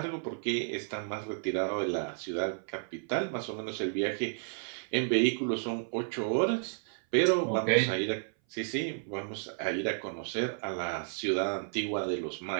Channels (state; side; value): silent; left; 56 dB below the other